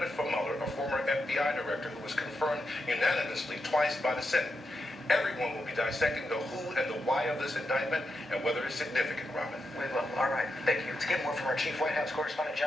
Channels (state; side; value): normal; both; correlation 0.86